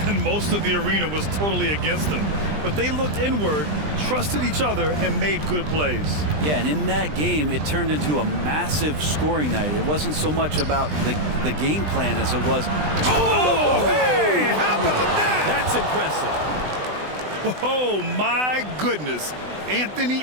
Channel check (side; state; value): left; late; 20 ms